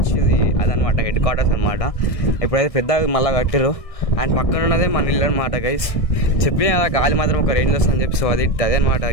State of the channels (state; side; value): late; right; 1.6 ms